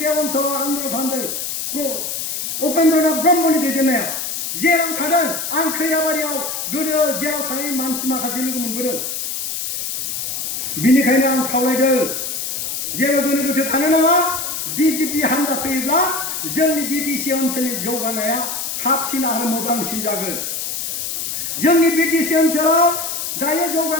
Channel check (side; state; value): left; noise; hiss, 3 dB below the sound